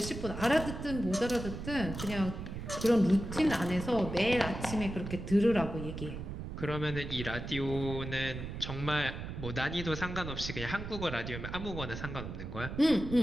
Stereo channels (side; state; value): right; noise; rumble, 7 dB below the sound